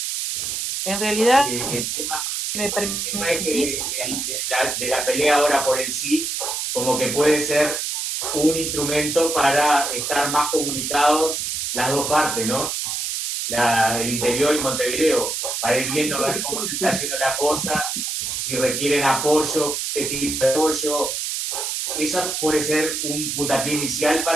En realidad, El tema me es permitís. que de la pelea ahora por el sí, como que puede ser un instrumento para estar más comunicados las dos partes, ¿no? El interior y Montevideo, para ir viendo a ver cómo se está haciendo la cosa, si requieren apoyo, qué tipo de apoyo. Eso puede ser un puntapié inicial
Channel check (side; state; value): right; noise; hiss, 2 dB below the sound